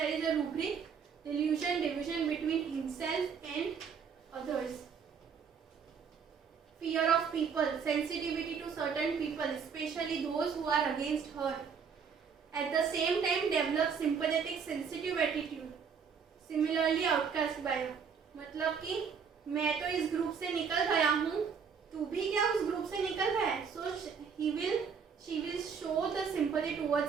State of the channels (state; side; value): quieter; left; 6.4 dB